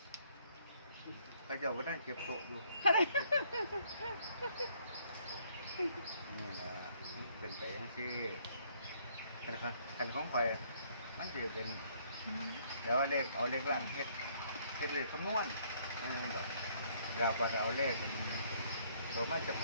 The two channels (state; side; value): inverted; both; correlation -0.65